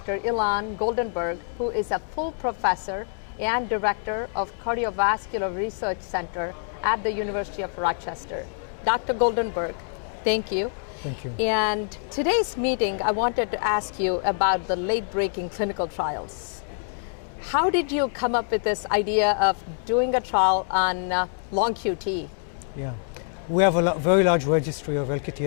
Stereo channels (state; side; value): silent; right; 61 dB below the other